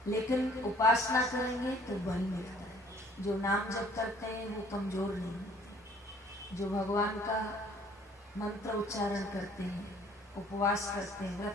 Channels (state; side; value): normal; both; correlation 0.56